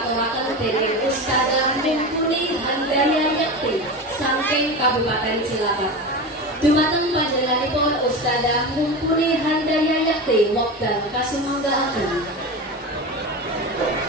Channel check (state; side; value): normal; both; correlation 0.25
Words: dening Ustadzah Mumpuni Handaya Yakti saking Kabupaten Cilacap. Dumateng panjenenganipun Ustadzah Mumpuni Handaya Yakti wekdal kasumanggaaken.